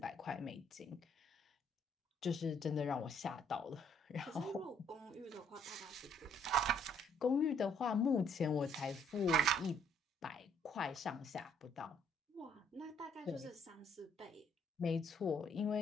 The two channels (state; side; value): normal; both; correlation 0.66